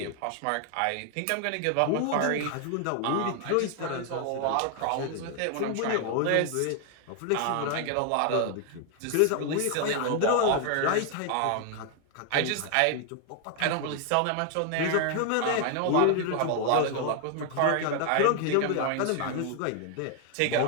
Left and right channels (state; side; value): different; both; correlation 0.00